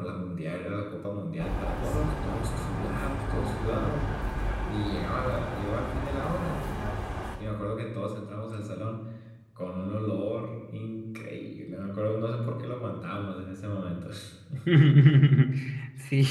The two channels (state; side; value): identical; both; correlation 1.00